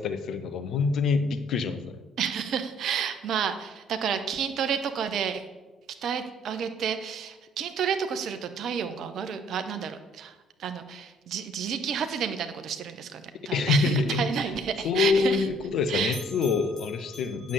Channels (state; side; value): normal; both; correlation 0.60